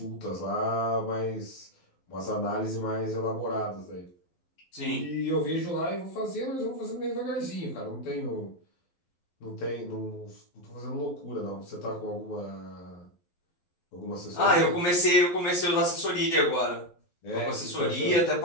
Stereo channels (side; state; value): right; late; 11 ms